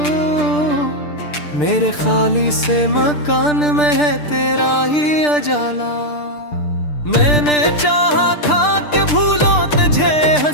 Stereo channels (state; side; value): late; right; 6.7 ms